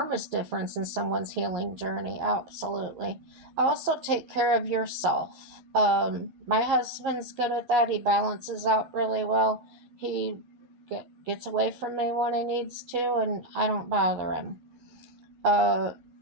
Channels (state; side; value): late; left; 12 ms